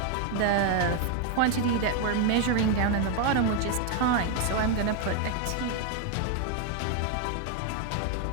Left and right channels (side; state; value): both; different; correlation 0.01